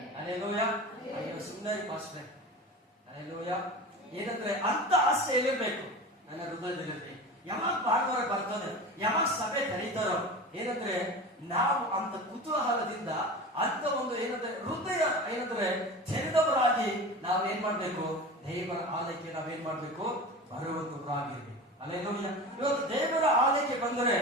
ಅಲ್ಲೇಲೂಯ. ಅಯ್ಯೋ ಸುಂದರಿ ಪಾಸ್ಟ್ರೆ ಅಲ್ಲೇಲೂಯ. ಏನಂದ್ರೆ ಅಂತ ಆಸೆ ಎಲ್ಲಿರ್ಬೇಕು ನನ್ನ ಹೃದಯದಲ್ಲಿರ್ಬೇಕು. ಯಾವಾಗ ಭಾನುವಾರ ಬರ್ತದೆ, ಯಾವಾಗ ಸಭೆ ಕರೀತಾರೋ, ಏನಂದ್ರೆ ನಾವು ಅಂತ ಕುತೂಹಲದಿಂದ ಅಂತ ಒಂದು ಏನಂದ್ರೆ ಹೃದಯ ಏನಂದ್ರೆ ತೆರೆದವರಾಗಿ ನಾವೇನ್ ಮಾಡ್ಬೇಕು, ದೇವರ ಆಲಯಕ್ಕೆ ನಾವೇನ್ ಮಾಡ್ಬೇಕು, ಬರುವಂತವರಾಗಿರ್ಬೇಕು. ಅಲ್ಲೇಲೂಯ. ಇವತ್ತು ದೇವರ ಆಲಯಕ್ಕೆ ಬಂದರೆ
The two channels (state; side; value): normal; both; correlation 0.32